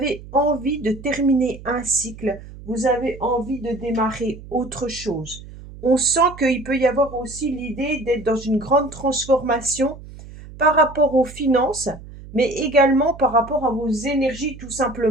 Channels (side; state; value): right; noise; hum, 16 dB below the sound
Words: envie de terminer un cycle, vous avez envie de démarrer autre chose. On sent qu'il peut y avoir aussi l'idée d'être dans une grande transformation par rapport aux finances, mais également par rapport à vos énergies tout